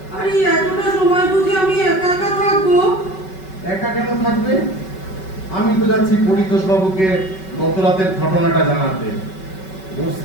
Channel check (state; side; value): late; right; 5.3 ms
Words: আর এই এতটা সময় বুঝে আমি একা একা থাকবো? একা কেন থাকবে? আমি তো যাচ্ছি পরিতোষ বাবুকে গত রাতের ঘটনাটা জানাতে। ওর